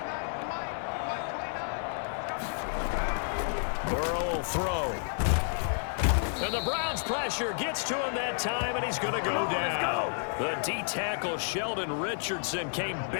Throw. And the Browns pressure gets to him that time, and he's going to go down. The D-tackle Sheldon Richardson came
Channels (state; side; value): silent; right; 57 dB below the other